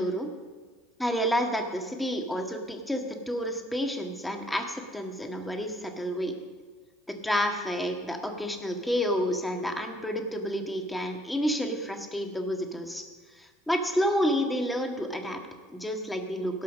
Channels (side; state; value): both; normal; correlation 0.65